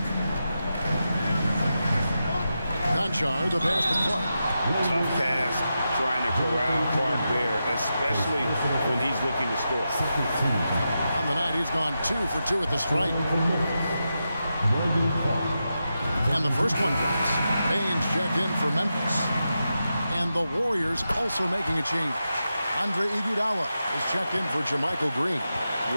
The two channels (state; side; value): inverted; both; correlation -0.89